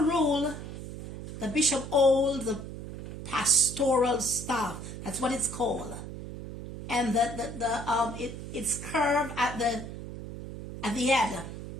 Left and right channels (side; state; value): right; noise; hum, 10 dB below the sound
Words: rule, the bishop holds the pastoral staff. That's what it's called. And it's curved at the head,